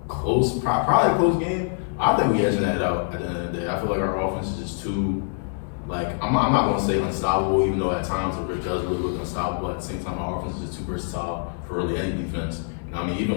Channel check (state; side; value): silent; right; 62 dB below the other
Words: close, probably a close game. I think we edging that out at the end of the day. I feel like our offense is just too, like, I'm not gonna say unstoppable, even though at times it really does really look unstoppable. At the same time, our offense is just too versatile for really any defense. You know what I mean?